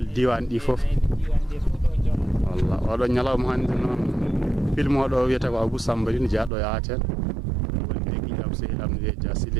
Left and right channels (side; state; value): left; drops out; at 6.5 s